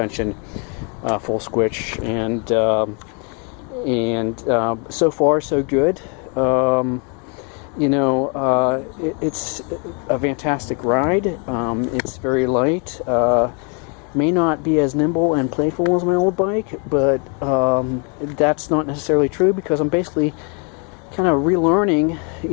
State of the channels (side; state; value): right; quieter; 36.3 dB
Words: full squish, and so far so good. It's a fantastic ride. It's very light. May not be as nimble and playful as my old bike, but that's not necessarily true because I'm basically kind of relearning,